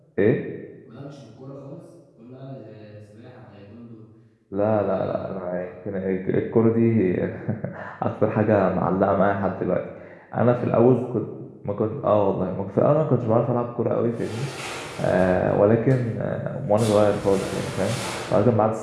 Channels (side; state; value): both; identical; correlation 1.00